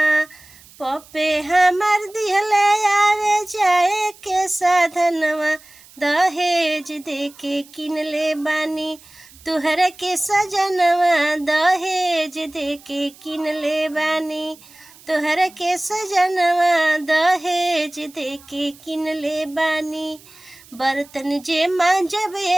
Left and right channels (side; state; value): right; noise; hiss, 24 dB below the sound